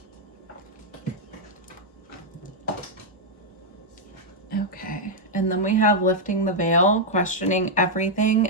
Okay, and then we have lifting the veil, questioning everything,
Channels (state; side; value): normal; both; correlation -0.03